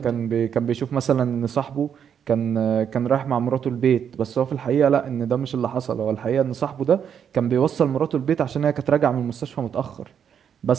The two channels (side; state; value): left; quieter; 8.1 dB